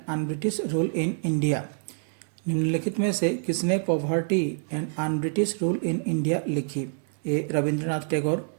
un British rule in India? निम्नलिखित में से किसने poverty and un British rule in India लिखी? ए रविंद्रनाथ टैगोर,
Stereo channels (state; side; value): silent; left; 60 dB below the other